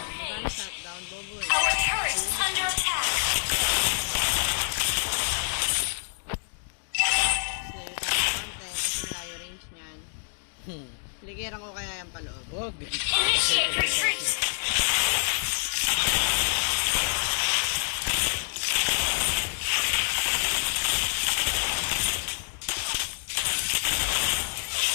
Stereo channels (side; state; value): right; silent; digital silence